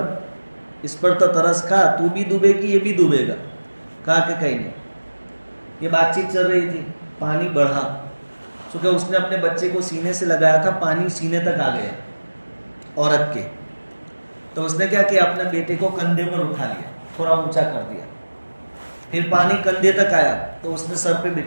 اس پر تو ترس کھا، تو بھی ڈوبے گی یہ بھی ڈوبے گا. کہا کہ کہیں نہیں. یہ بات چیت چل رہی تھی، پانی بڑھا، چونکہ اس نے اپنے بچے کو سینے سے لگایا تھا، پانی سینے تک آ گیا عورت کے. تو اس نے کیا کیا، اپنے بیٹے کو کندھے پر اٹھا لیا، تھوڑا اونچا کر دیا. پھر پانی کندھے تک آیا تو اس نے سر پہ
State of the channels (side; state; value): both; inverted; correlation -1.00